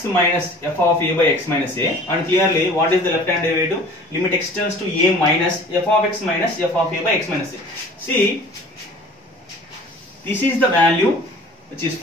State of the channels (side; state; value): both; normal; correlation 0.46